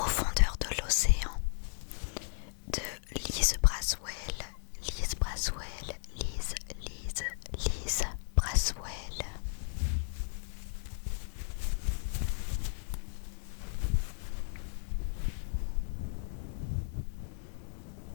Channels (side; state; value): right; silent; digital silence